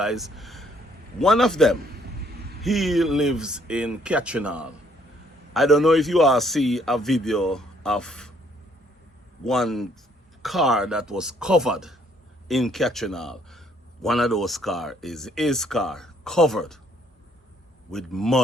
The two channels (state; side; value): normal; both; correlation 0.65